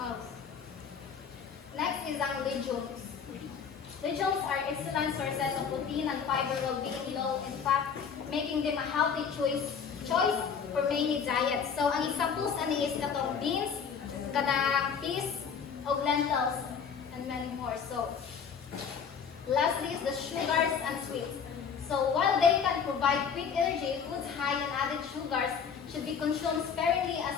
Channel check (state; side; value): quieter; right; 6.7 dB